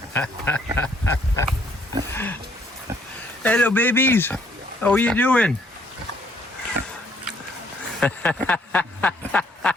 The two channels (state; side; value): normal; both; correlation 0.66